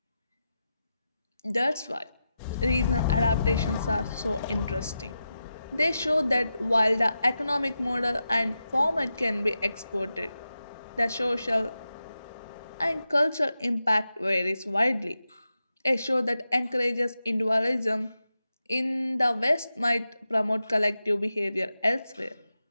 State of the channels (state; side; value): inverted; both; correlation -0.90